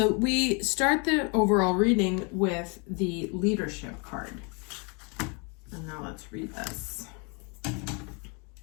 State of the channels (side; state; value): right; quieter; 33.6 dB